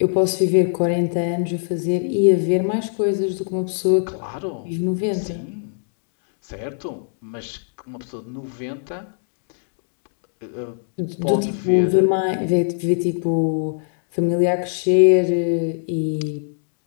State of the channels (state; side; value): silent; right; digital silence